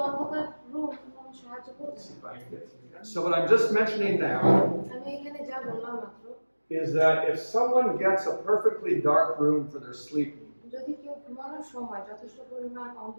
অন্ধকার রুম কোনো সাহায্য করবে না। So what I'm just mentioning now আমি এখানে যা বললাম মাত্র, is that if someone gets a perfectly dark room for their sleeping, যদি কেউ ঘুমানোর সময় যথেষ্ট পরিমাণ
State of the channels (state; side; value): inverted; both; correlation -1.00